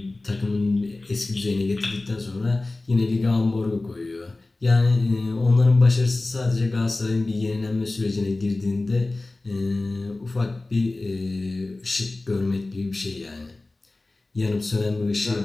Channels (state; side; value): quieter; right; 3.0 dB